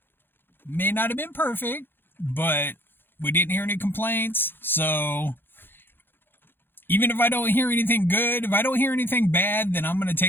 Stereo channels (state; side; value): late; right; 0.10 ms